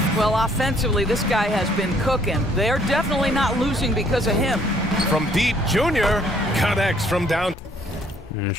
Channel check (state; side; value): normal; both; correlation 0.63